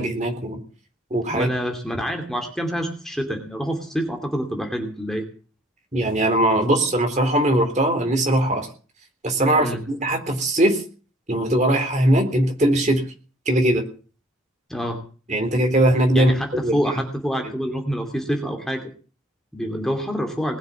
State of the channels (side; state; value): both; normal; correlation 0.58